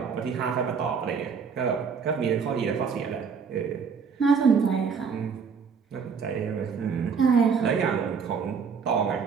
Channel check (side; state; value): left; quieter; 6.0 dB